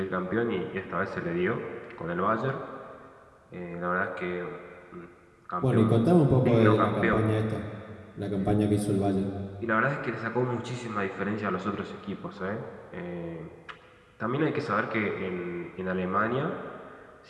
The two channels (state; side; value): identical; both; correlation 1.00